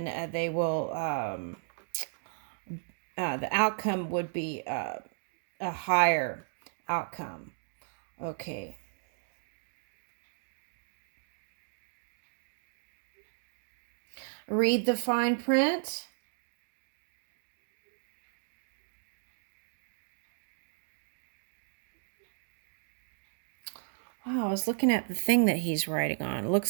they will, the outcome would be a higher outcome. Okay. Read the fine print. Wow, I was looking at the thing that he's writing on. It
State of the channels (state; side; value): silent; left; digital silence